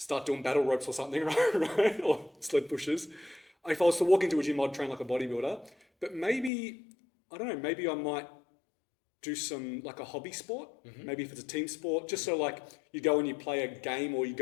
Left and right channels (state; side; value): drops out; right; at 6.5 s